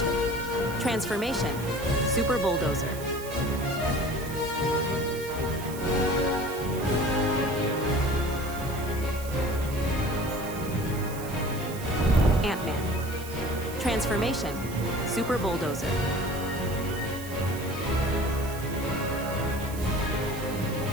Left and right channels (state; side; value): noise; right; hiss, 14 dB below the sound